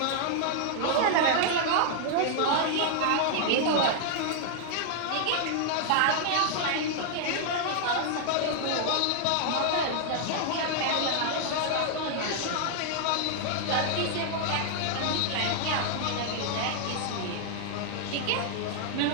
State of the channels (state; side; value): different; both; correlation 0.00